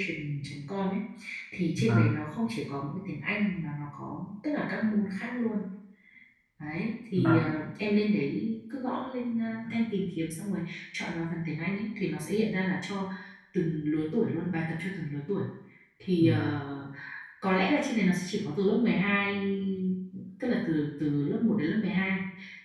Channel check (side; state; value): both; identical; correlation 1.00